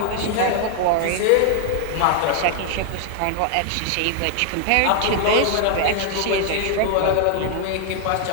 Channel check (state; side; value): different; both; correlation 0.00